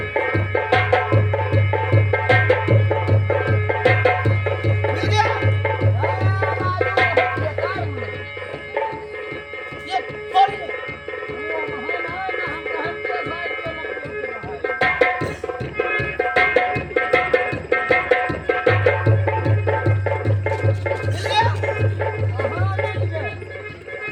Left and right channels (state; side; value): identical; both; correlation 1.00